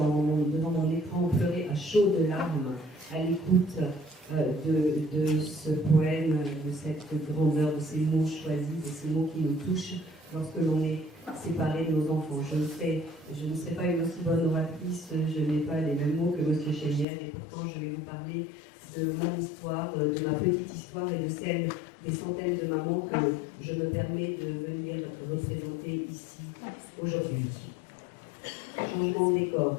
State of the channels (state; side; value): drops out; right; at 17.1 s